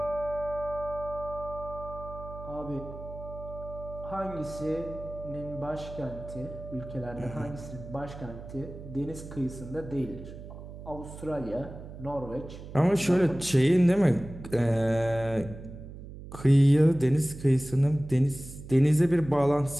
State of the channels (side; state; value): right; noise; hum, 13 dB below the sound